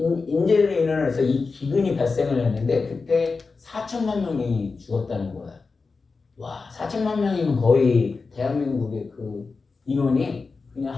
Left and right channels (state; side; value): quieter; right; 4.3 dB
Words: 인재로 인해서 이 기근이 발생을 했는데 그때 4천만 명이 죽었다는 거예요. 와, 4천만 명이면 거의 대한민국의 그 인원이 그냥